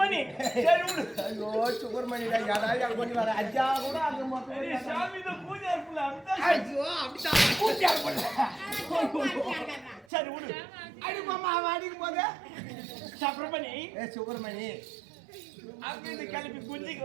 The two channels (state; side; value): drops out; left; at 10.1 s